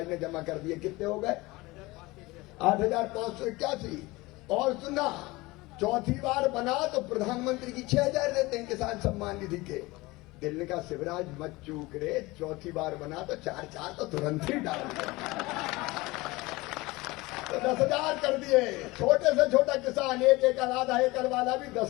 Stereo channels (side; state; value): right; quieter; 21.6 dB